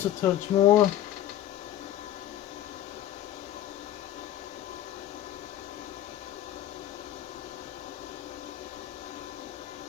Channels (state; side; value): quieter; right; 12.3 dB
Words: a touch more.